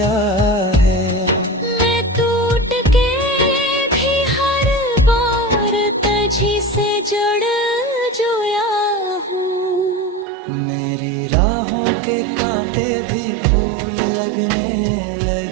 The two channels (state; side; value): drops out; left; at 10.2 s